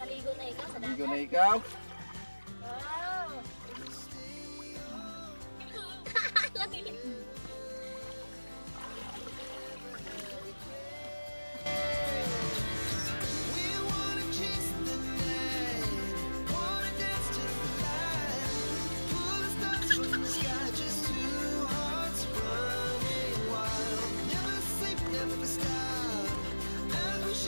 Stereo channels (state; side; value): inverted; both; correlation -1.00